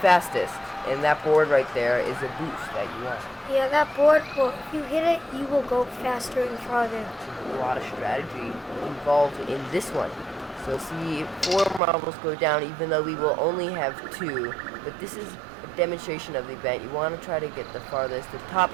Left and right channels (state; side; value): drops out; left; at 11.8 s